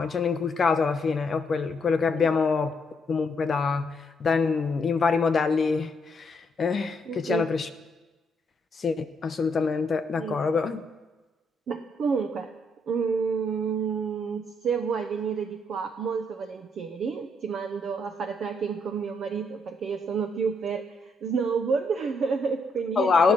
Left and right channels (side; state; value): both; normal; correlation 0.75